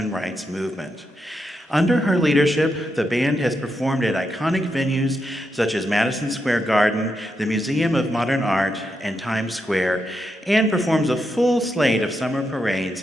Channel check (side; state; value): both; normal; correlation 0.84